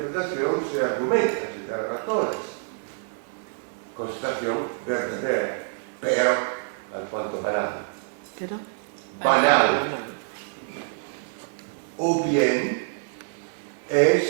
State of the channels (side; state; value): left; silent; digital silence